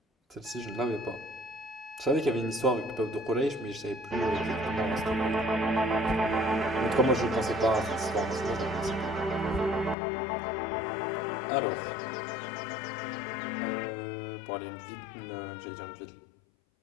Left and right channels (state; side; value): drops out; right; at 10.0 s